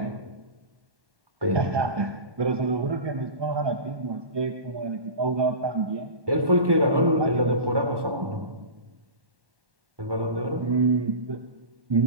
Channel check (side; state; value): left; late; 1.2 ms